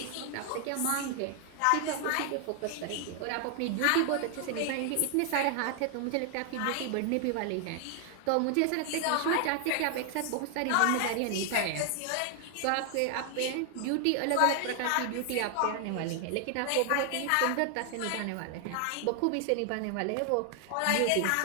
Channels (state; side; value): different; both; correlation 0.00